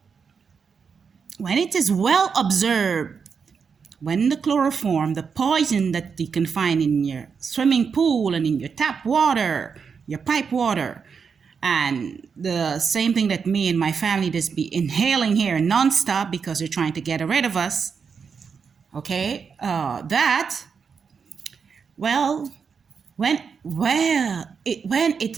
when it is well observed, when the chloroform, the poison that you can find in your swimming pool and in your tap water, your pipe water, and the same thing that me and my family just be inhaling here nonstop because they're trying to get rid of us, okay, when it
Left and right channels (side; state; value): left; quieter; 6.0 dB